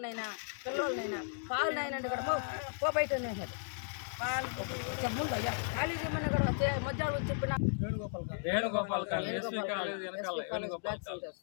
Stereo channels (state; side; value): silent; right; digital silence